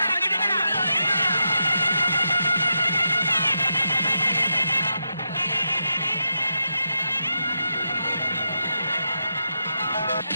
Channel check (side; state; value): both; inverted; correlation -0.86